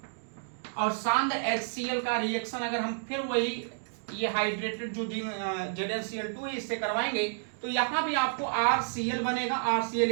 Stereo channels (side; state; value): left; silent; digital silence